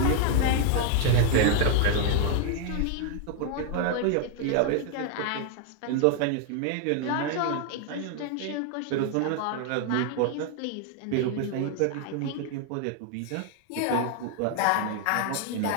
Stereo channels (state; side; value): different; both; correlation 0.00